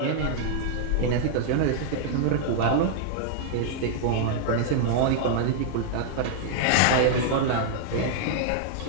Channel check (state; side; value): different; both; correlation -0.01